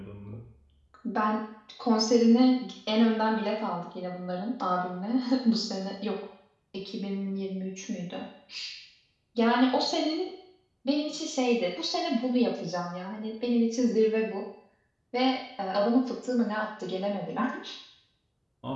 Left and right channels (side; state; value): both; identical; correlation 1.00